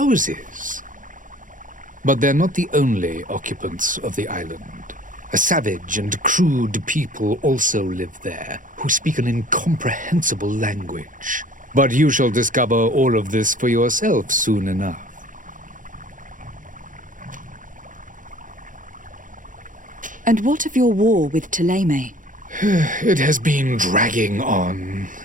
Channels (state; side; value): late; left; 0.38 ms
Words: But they're not the only occupants of the island. A savage and crude people also live there, who speak an incomprehensible language. But you shall discover all of this for yourself soon enough. And what of your war with Ptolemy? It has been dragging on.